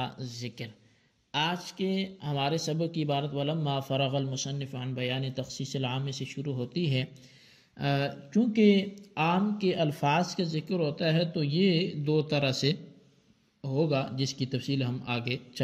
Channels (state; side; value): identical; both; correlation 1.00